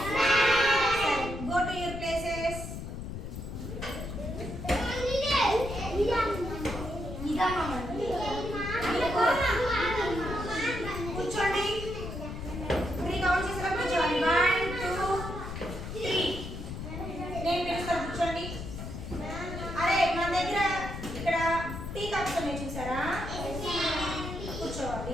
సరే, గో టు యువర్ ప్లేసెస్. కూర్చోండి. 3 కౌంట్ చేసిన కూర్చోండి. 1 2 3. నేను పిలుస్తాను, కూర్చోండి. అరే మన దగ్గర ఇక్కడ టీ కప్స్ ఉన్నాయి చూసారా?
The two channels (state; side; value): noise; left; rumble, 7 dB below the sound